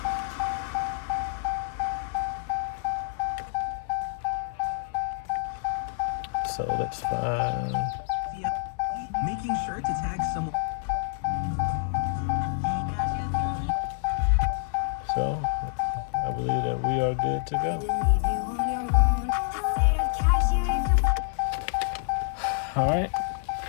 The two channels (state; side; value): silent; right; 60 dB below the other